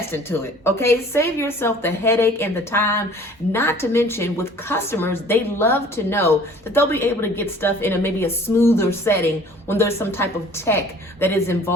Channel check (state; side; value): normal; both; correlation 0.50